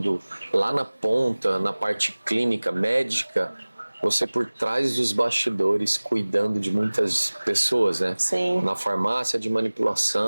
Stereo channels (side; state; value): both; inverted; correlation -1.00